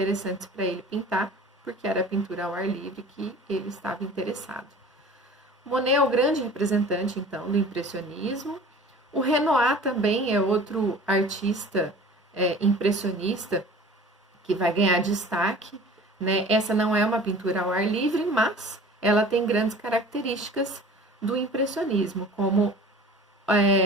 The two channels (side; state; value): both; normal; correlation 0.43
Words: para ele pintar, porque era a pintura ao ar livre que ele estava interessado. Monet é o grande representante, então, do impressionismo. O Renoir também é outro artista impressionista que vai ganhar destaque né? Essa não é uma pintura ao ar livre, mas ela tem grandes características do impressionismo, como